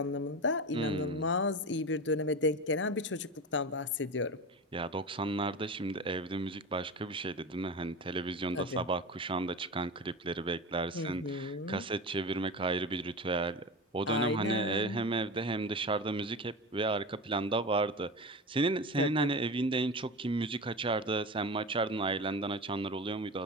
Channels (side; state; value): both; normal; correlation 0.27